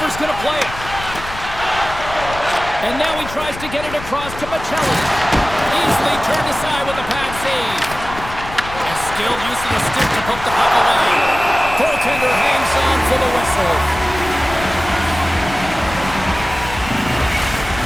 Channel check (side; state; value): left; noise; rumble, 12 dB below the sound